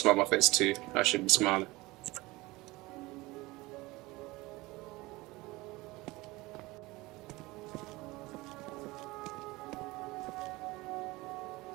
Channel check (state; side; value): quieter; left; 21.3 dB